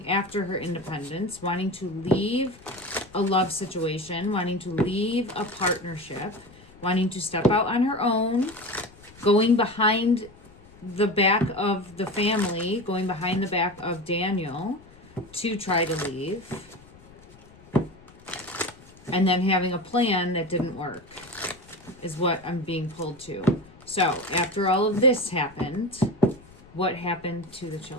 after her independence, wanting to leave a love situation, wanting to leave a partnership, wanting to step out on her own, going behind the back of the family, going behind the back of Daniel to try to leave, and then having a plan that didn't work is what I'm being pulled to. So, after all of this happened... what happened to the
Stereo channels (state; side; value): noise; left; rumble, 24 dB below the sound